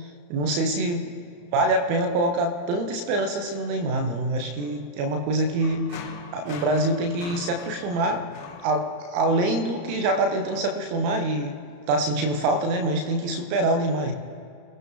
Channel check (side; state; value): left; late; 34 ms